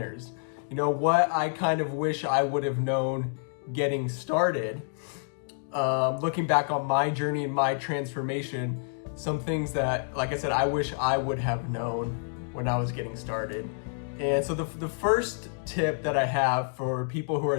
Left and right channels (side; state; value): right; silent; digital silence